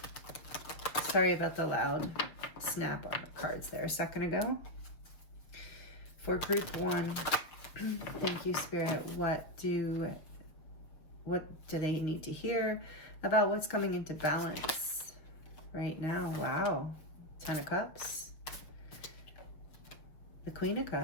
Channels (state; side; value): late; right; 6.5 ms